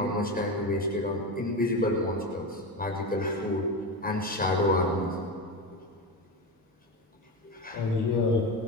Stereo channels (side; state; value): both; normal; correlation 0.20